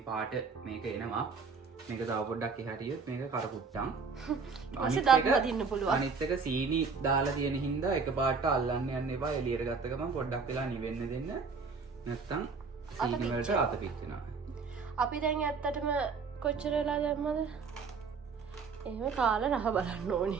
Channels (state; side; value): quieter; left; 5.0 dB